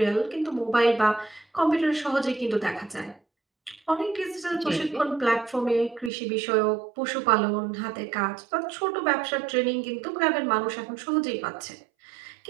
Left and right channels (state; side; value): drops out; left; at 6.1 s